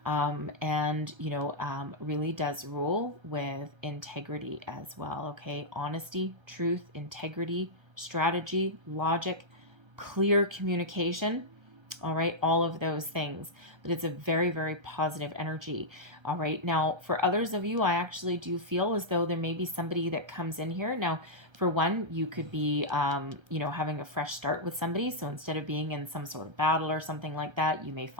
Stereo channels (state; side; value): late; left; 1.3 ms